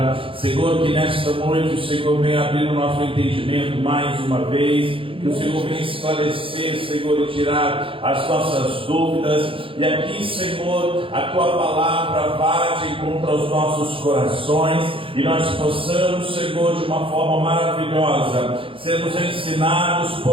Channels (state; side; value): late; left; 0.26 ms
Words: Senhor, que nesta noite o Senhor venha abrir o nosso entendimento mais uma vez, que o Senhor venha esclarecer, Senhor, e tirar as nossas dúvidas. E aqui, Senhor, a Tua palavra vá de encontro aos nossos corações e nós possamos, Senhor, de uma forma maravilhosa, sermos ensinados